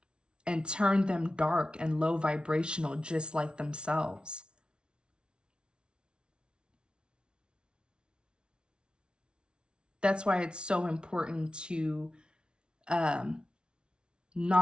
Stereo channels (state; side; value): late; left; 0.056 ms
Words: and turn them dark and low vibrational, just like themselves. That's why it's so important to